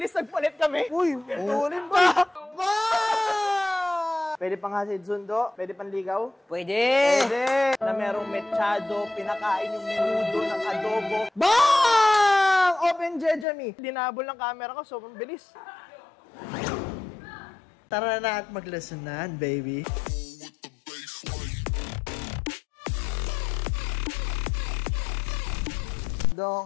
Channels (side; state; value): right; drops out; at 13.5 s